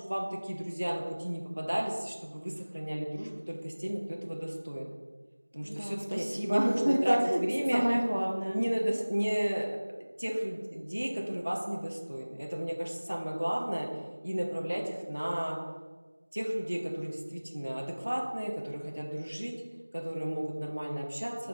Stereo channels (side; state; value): both; inverted; correlation -1.00